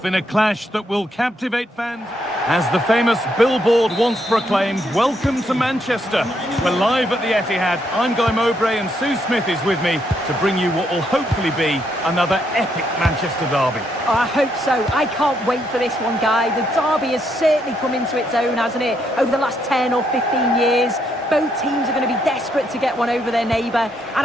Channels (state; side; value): normal; both; correlation 0.75